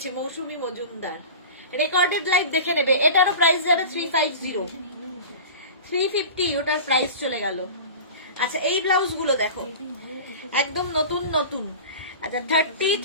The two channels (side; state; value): both; inverted; correlation -0.34